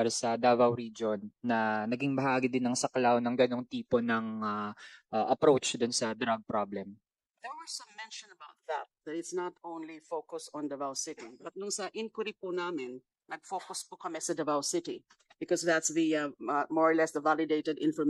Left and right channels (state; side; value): identical; both; correlation 1.00